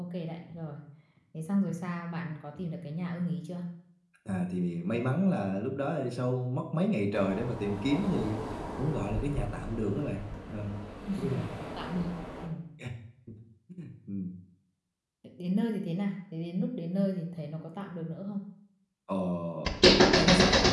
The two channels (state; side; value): identical; both; correlation 1.00